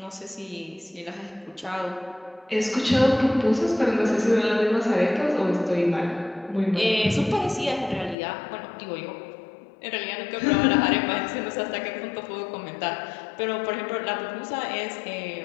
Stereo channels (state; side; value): drops out; right; at 8.2 s